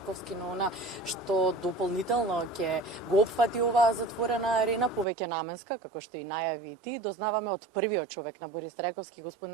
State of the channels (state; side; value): drops out; left; at 5.1 s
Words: но она што дополнително ќе го опфати оваа затворена арена, повеќе наменска, како што и најави и ти, дознаваме од првиот човек на Борис Трајковски,